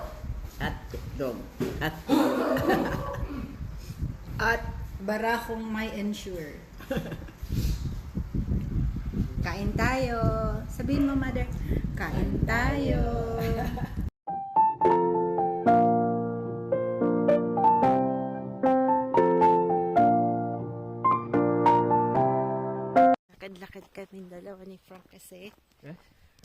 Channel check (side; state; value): both; identical; correlation 1.00